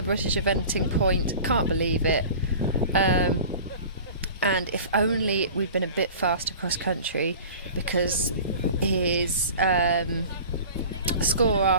British eventing point. Can't believe it. And if only we'd been a bit faster cross country, because his score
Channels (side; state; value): both; inverted; correlation -0.40